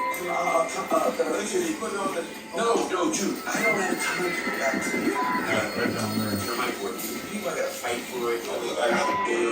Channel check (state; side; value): identical; both; correlation 1.00